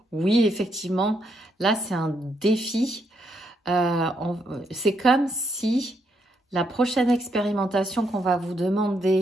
oui, effectivement, là, c'est un défi. C'est comme si la prochaine expérimentation qu'on va vous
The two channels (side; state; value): both; normal; correlation 0.77